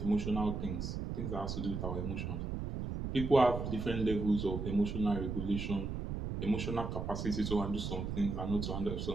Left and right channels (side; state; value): right; noise; rumble, 4 dB below the sound